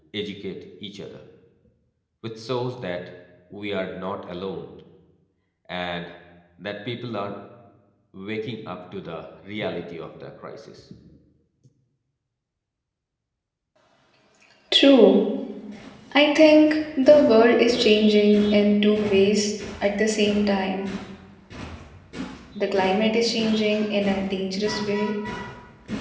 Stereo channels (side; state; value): both; identical; correlation 1.00